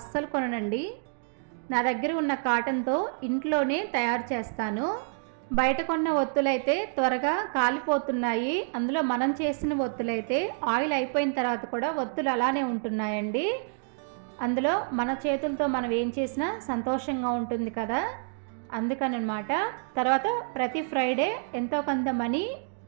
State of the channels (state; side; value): silent; left; digital silence